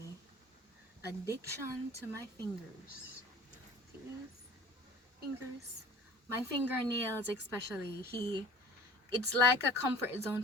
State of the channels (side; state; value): both; normal; correlation 0.45